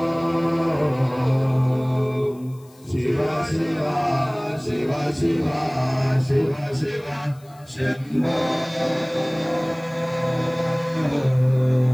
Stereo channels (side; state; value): left; noise; hiss, 29 dB below the sound